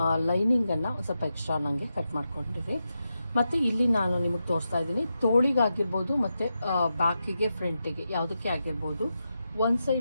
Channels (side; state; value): both; inverted; correlation -0.88